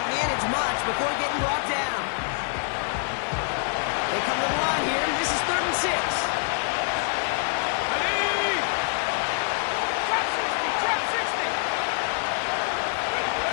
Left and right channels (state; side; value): silent; right; 61 dB below the other